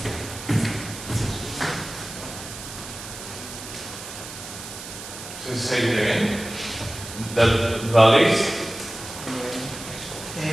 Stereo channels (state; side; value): noise; right; hiss, 11 dB below the sound